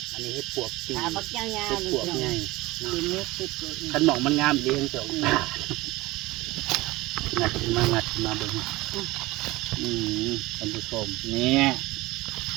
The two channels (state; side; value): quieter; left; 20.2 dB